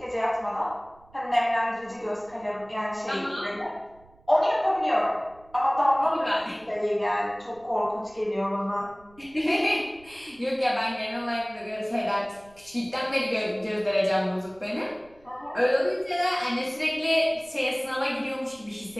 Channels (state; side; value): noise; right; rumble, 28 dB below the sound